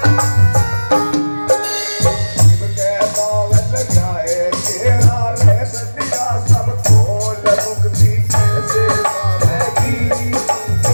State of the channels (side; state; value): both; inverted; correlation -1.00